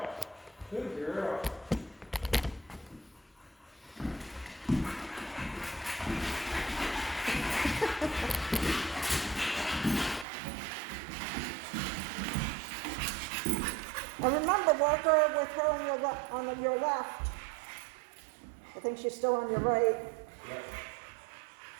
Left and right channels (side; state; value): left; drops out; at 10.2 s